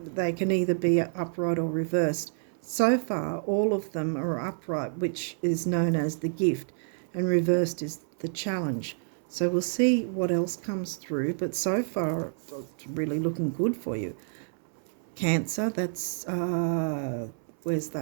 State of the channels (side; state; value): left; silent; 59 dB below the other